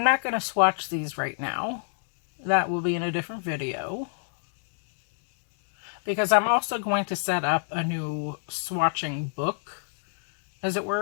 not going to swatch these right now. That will be in a different video, because I'm also going to set up a new swatching book, as it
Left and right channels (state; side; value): silent; right; digital silence